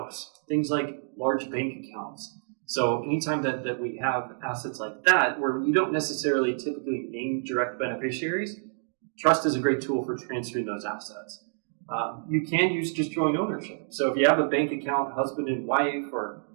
things like large bank accounts. So anytime that we have assets like that, where you don't necessarily typically name direct beneficiaries, trust is a great tool for transferring those assets. You can use just joint ownership. So if you have a bank account, husband and wife, or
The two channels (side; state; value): left; silent; digital silence